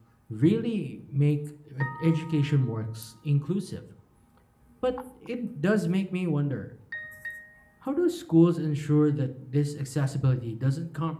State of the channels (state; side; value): identical; both; correlation 1.00